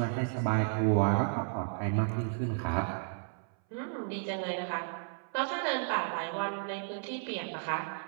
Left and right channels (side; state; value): left; silent; 56 dB below the other